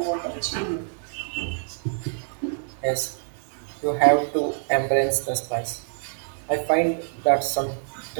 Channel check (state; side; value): silent; left; 59 dB below the other